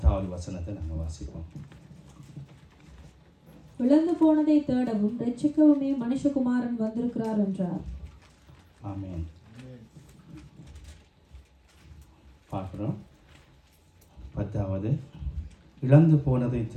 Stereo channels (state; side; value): identical; both; correlation 1.00